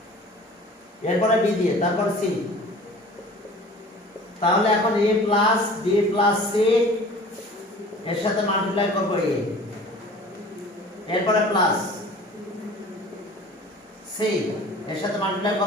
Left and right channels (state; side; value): normal; both; correlation 0.44